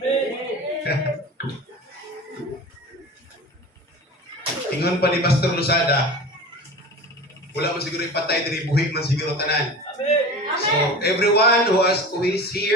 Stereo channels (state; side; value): normal; both; correlation 0.34